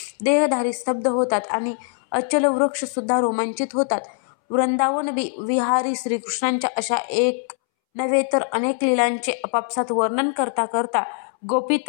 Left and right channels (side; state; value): right; silent; 64 dB below the other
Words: देहधारी स्तब्ध होतात आणि अचल वृक्ष सुद्धा रोमांचित होतात. वृंदावन विहारी श्रीकृष्णांच्या अशा एक नव्हे तर अनेक लीलांचे आपापसात वर्णन करता करता गोपी